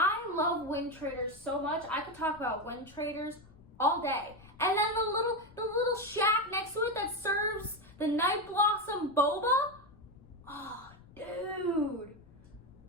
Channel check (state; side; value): noise; left; rumble, 24 dB below the sound